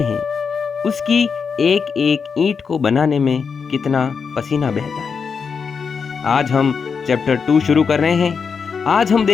उसकी एक एक ईंट को बनाने में कितना पसीना बहता है। आज हम चैप्टर 2 शुरू कर रहे हैं। आज हम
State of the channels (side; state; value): right; quieter; 5.8 dB